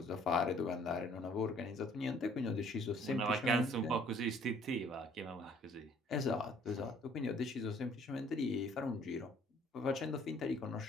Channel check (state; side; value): normal; both; correlation 0.59